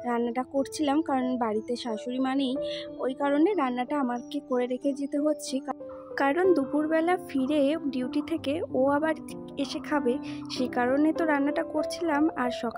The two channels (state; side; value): identical; both; correlation 1.00